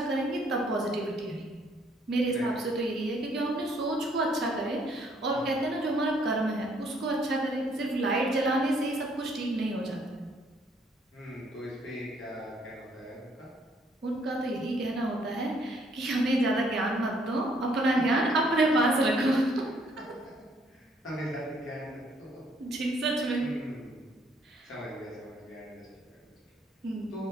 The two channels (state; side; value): normal; both; correlation 0.66